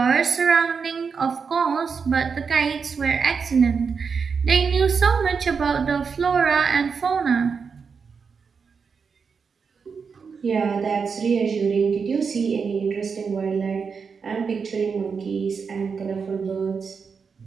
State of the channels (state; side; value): quieter; left; 5.7 dB